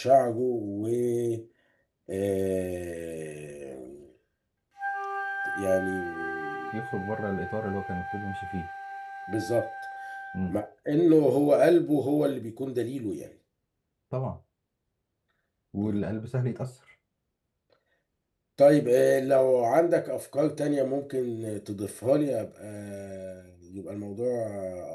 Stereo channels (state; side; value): identical; both; correlation 1.00